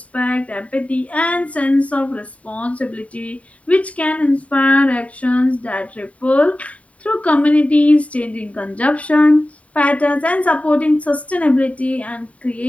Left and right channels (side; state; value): right; late; 0.067 ms